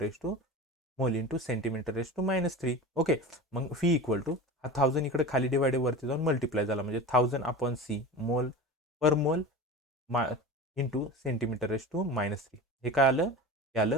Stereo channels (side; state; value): both; normal; correlation 0.31